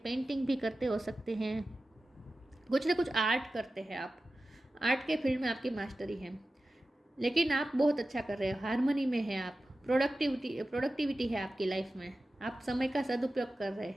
पेंटिंग भी करते हो सकते हैं, कुछ ना कुछ आर्ट करते हैं आप, आर्ट के फील्ड में आपकी मास्टरी है, लेकिन आप बहुत अच्छा कर रहे हो, हारमोनी में है आप, प्रोडक्टिविटी है आपकी लाइफ में, आप समय का सदुपयोग कर रहे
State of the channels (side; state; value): both; normal; correlation 0.95